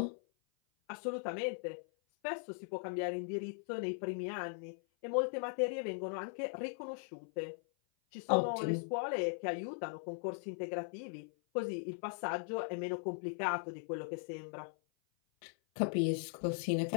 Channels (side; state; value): right; silent; 52 dB below the other